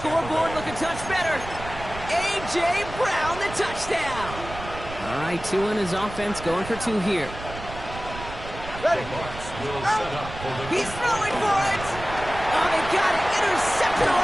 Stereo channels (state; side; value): noise; right; rumble, 12 dB below the sound